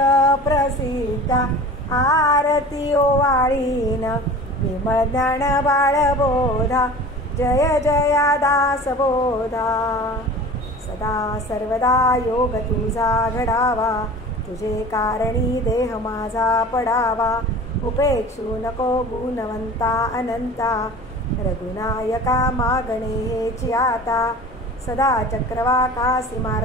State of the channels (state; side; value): normal; both; correlation 0.39